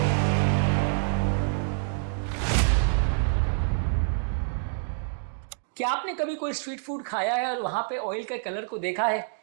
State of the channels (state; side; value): silent; left; digital silence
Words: क्या आपने कभी कोई स्ट्रीट फूड खाया है और वहां पे ऑयल के कलर को देखा है?